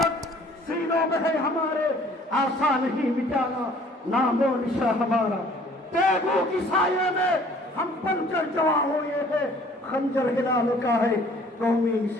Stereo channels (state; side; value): normal; both; correlation 0.55